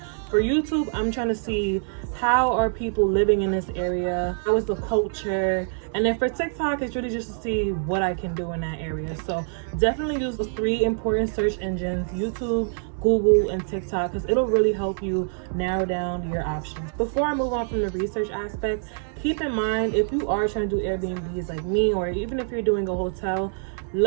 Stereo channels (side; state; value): left; silent; 59 dB below the other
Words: For YouTube, I'm trying to see how are people living in this area, how is the culture, and then for TikTok, it's really just to see what I can do in that area. So definitely use those 3 important search engines: YouTube, Google, and TikTok, because it'll really help you narrow down your options. Before I move on from the research aspect, keep in mind, if you are trying to do Airbnbs like me, or even if you're doing a hotel,